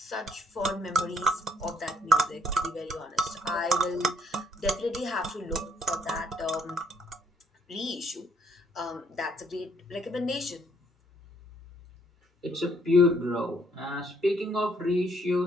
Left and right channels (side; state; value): both; normal; correlation 0.68